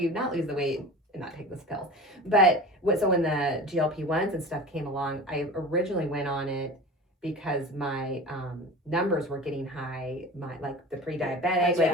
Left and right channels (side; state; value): both; normal; correlation 0.35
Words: not lose the weight and not take this pill. But so when the GLP-1s and stuff came along, I originally went on it because my numbers were getting high, the pre-diabetic,